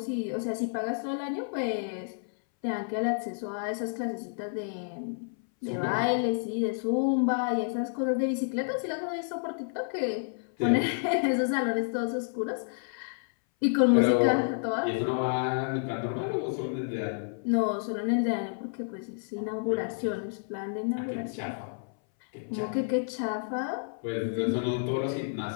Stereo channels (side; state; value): right; silent; 58 dB below the other